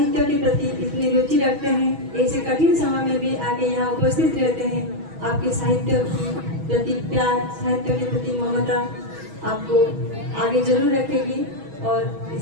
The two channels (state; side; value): late; left; 6.2 ms